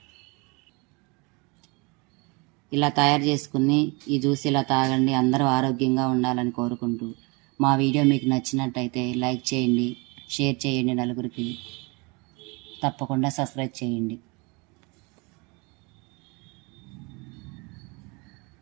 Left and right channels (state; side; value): quieter; left; 28.7 dB